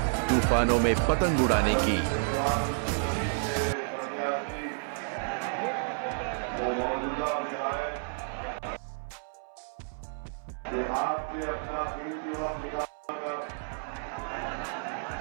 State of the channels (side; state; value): left; silent; 57 dB below the other